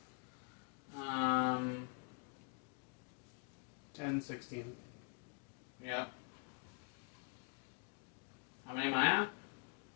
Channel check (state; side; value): quieter; right; 38.1 dB